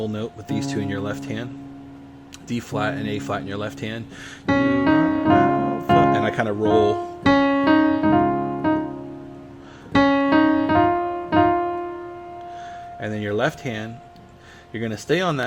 note with these two in your left hand. D flat and A flat in your left hand. And I kind of roll. And then your left hand, you're going to stay on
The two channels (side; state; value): both; identical; correlation 1.00